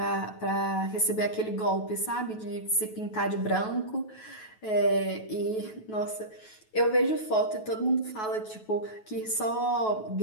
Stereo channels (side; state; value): right; late; 9.2 ms